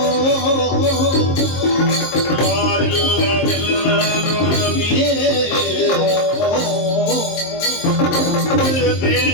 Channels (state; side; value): late; right; 23 ms